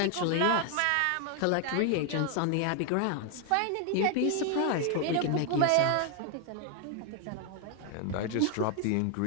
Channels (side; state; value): both; different; correlation 0.00